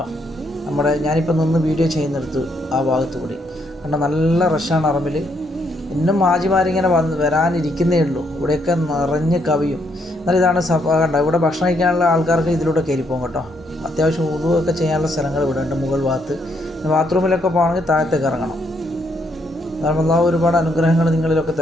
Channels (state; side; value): normal; both; correlation 0.74